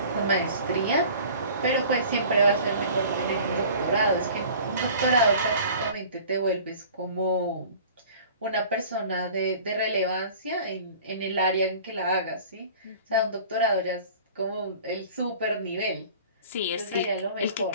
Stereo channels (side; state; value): both; inverted; correlation -0.45